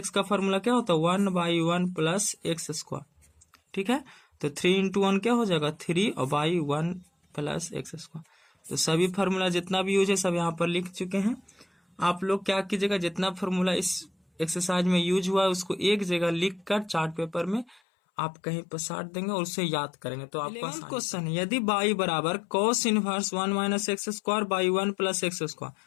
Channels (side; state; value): right; drops out; at 17.8 s